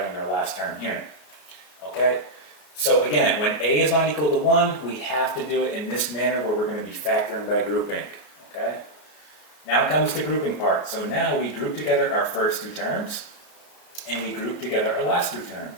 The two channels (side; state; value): right; late; 33 ms